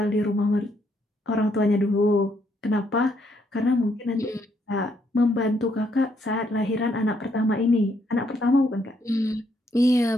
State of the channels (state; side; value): normal; both; correlation 0.73